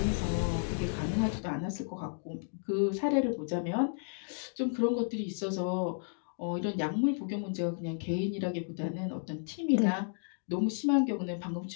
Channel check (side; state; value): right; silent; digital silence